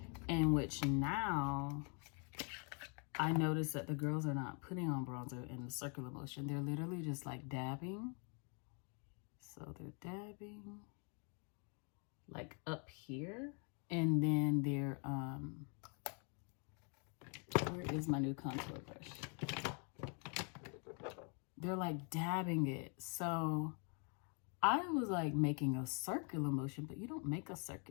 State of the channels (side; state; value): right; quieter; 38.4 dB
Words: in which now I notice that the girls are not putting on bronzer in the circular motion. They're literally just like dabbing. So they're dabbing like up here, and then they're where is my new contour brush? They're like dabbing it. So I was like making a circular motion, but you don't make a